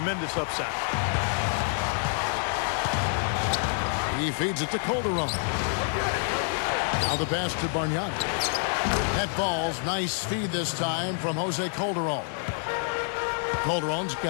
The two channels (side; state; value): right; silent; 60 dB below the other